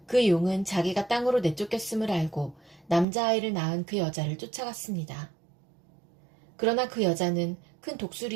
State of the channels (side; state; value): left; drops out; at 3.1 s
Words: 그 용은 자기가 땅으로 내쫓겼음을 알고 남자아이를 낳은 그 여자를 쫓아갔습니다. 그러나 그 여자는 큰